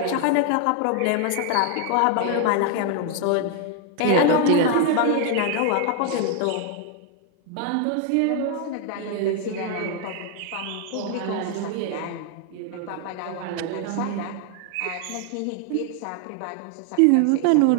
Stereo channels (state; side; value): different; both; correlation 0.00